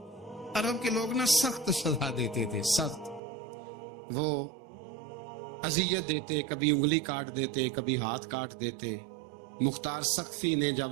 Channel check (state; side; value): drops out; left; at 3.2 s